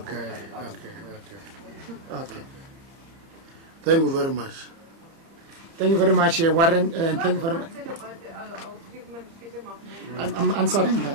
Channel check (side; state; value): left; late; 30 ms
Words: by the government. Okay. Thank you very much. Thank you very much, Warren, and thank you very much. I'm answering